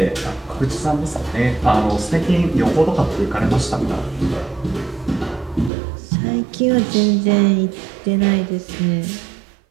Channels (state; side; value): drops out; left; at 5.7 s